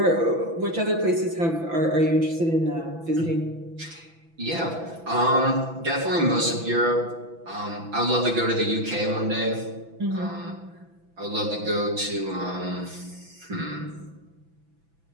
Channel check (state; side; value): late; left; 6.0 ms